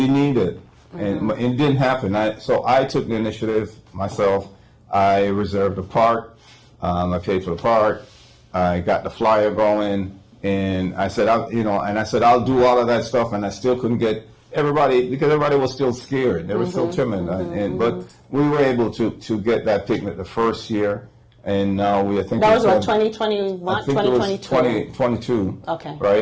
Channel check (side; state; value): both; identical; correlation 1.00